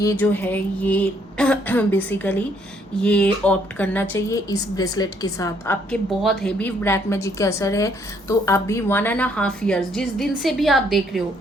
जो है ये बेसिकली ये ऑप्ट करना चाहिए इस ब्रेसलेट के साथ। आपके बहुत हेवी ब्लैक मैजिक का असर है, तो अभी 1.5 ईयर्स जिस दिन से भी आप देख रहे हो,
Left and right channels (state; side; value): normal; both; correlation 0.68